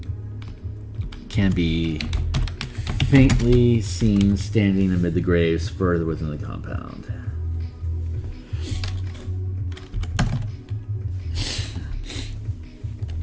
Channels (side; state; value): both; identical; correlation 1.00